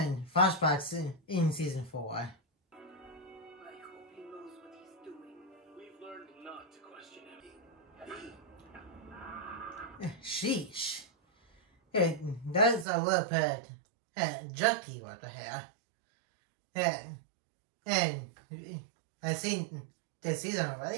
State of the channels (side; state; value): left; drops out; at 12.9 s